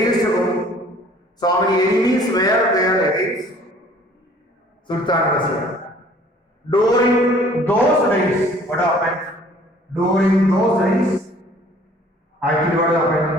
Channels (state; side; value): normal; both; correlation 0.54